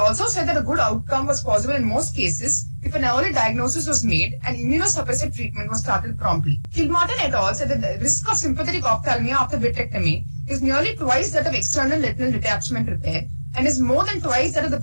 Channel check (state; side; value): inverted; both; correlation -1.00